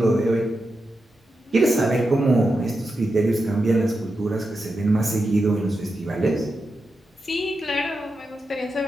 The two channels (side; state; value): both; normal; correlation 0.88